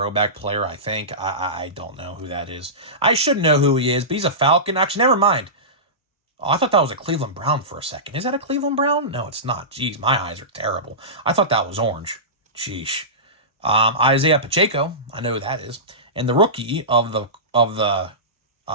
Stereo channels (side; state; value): both; normal; correlation -0.20